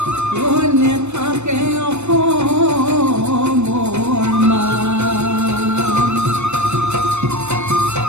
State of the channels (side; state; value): left; late; 0.82 ms